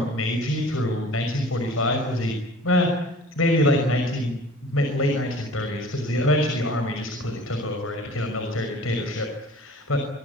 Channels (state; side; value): normal; both; correlation 0.46